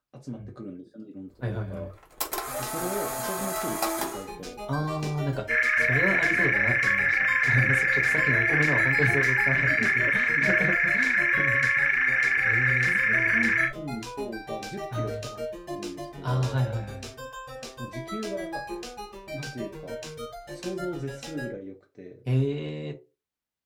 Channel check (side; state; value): both; identical; correlation 1.00